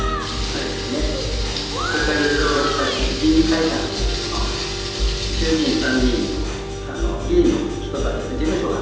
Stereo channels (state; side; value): identical; both; correlation 1.00